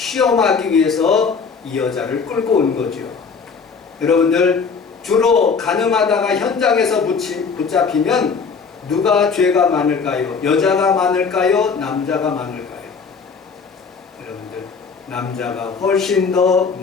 위해서 이 여자를 끌고 온 거죠. 여러분들, 주로 가늠하다가 현장에서 붙잡히면 누가 죄가 많을까요? 여자가 많을까요? 남자가 많을까요? 여러분들, 남자가 훨씬 더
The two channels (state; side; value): quieter; right; 5.5 dB